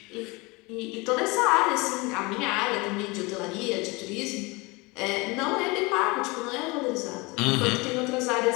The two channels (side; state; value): right; quieter; 25.4 dB